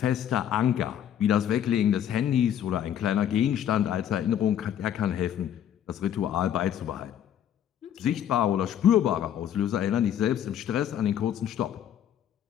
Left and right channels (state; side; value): quieter; right; 10.0 dB